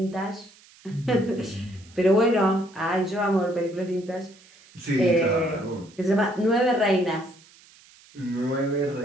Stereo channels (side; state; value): right; noise; hiss, 26 dB below the sound